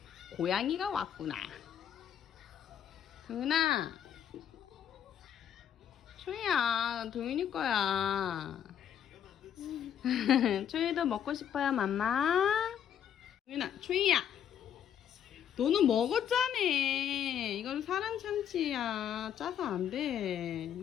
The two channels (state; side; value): quieter; right; 9.3 dB